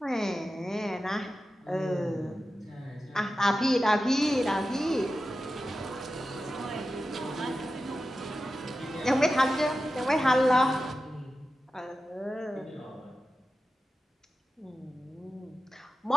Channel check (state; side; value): normal; both; correlation 0.93